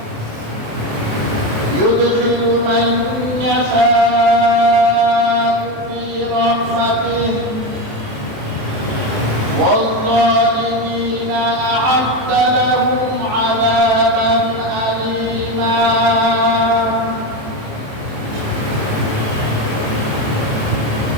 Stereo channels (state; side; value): late; left; 27 ms